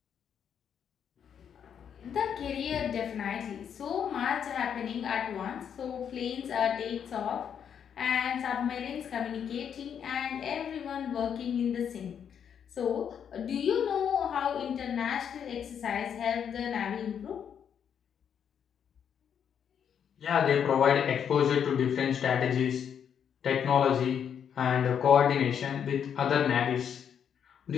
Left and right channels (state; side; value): quieter; right; 8.1 dB